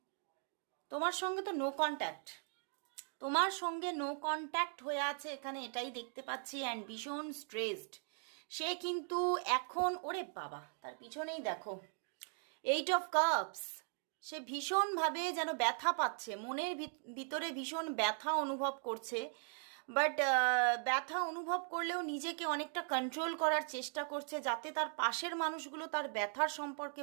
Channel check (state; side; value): silent; left; 52 dB below the other